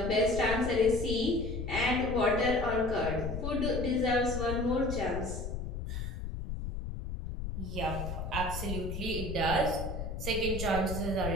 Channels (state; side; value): noise; left; rumble, 5 dB below the sound